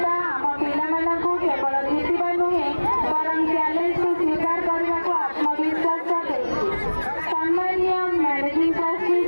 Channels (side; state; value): both; inverted; correlation -1.00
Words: ଆମ ପିଲାମାନଙ୍କୁ କେବଳ